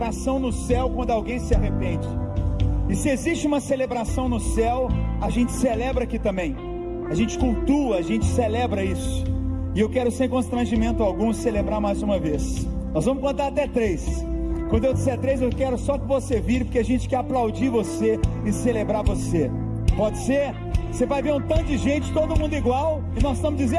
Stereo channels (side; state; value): both; identical; correlation 1.00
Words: no céu quando alguém se arrepende. E se existe uma celebração no céu, a gente celebra aqui também. A gente cultua, a gente celebra isso. E eu quero, sem constrangimento algum, celebrar mais uma vez. Nós vamos contar até 3. Quando eu disser 3, eu quero só que você vire, porque a gente quer aplaudir você e celebrar você. Pode ser? Você vai ver um tanto de gente, todo mundo igual, e nós estamos